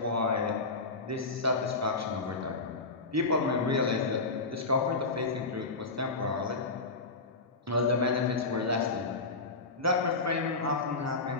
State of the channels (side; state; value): right; quieter; 3.6 dB